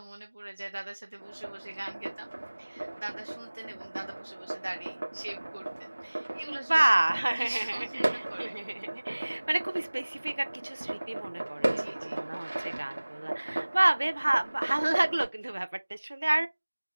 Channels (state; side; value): inverted; both; correlation -1.00